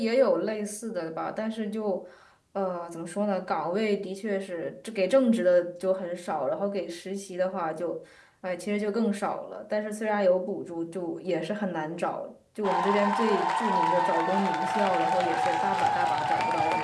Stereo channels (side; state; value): both; identical; correlation 1.00